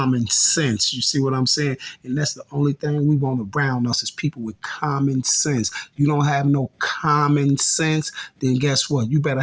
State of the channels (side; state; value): both; identical; correlation 1.00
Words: sense. You see what I'm saying? And that's the only thing we want around us is people with common sense. You don't have no common sense, then guess what? You better